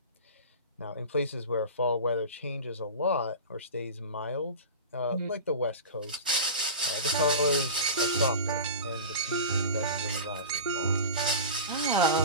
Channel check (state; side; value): inverted; both; correlation -0.31